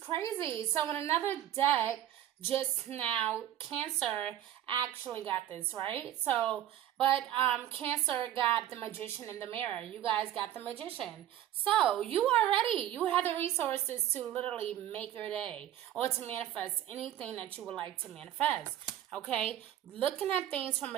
So in another deck, just now, Cancer actually got this, right? So, but Cancer got the Magician in the mirror. You guys got the Magician. So you are ready. You have the resources to literally make your day or to manifest anything that you would like to manifest. Okay, looking at things from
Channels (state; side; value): quieter; left; 11.9 dB